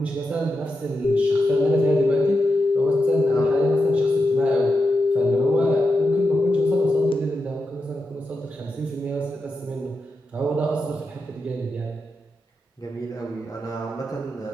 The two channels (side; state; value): both; normal; correlation 0.88